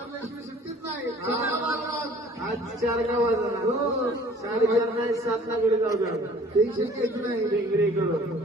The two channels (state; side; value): normal; both; correlation 0.52